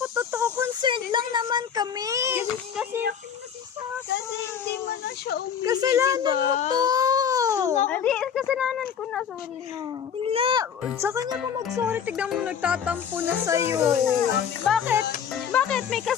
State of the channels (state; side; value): quieter; right; 7.8 dB